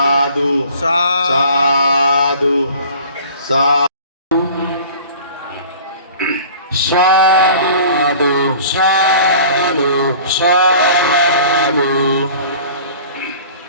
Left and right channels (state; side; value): inverted; both; correlation -0.45